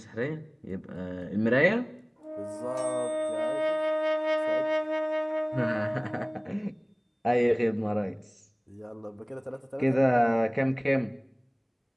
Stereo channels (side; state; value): both; identical; correlation 1.00